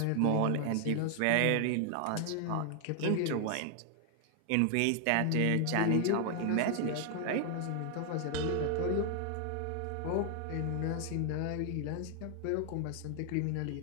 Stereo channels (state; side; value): different; both; correlation 0.00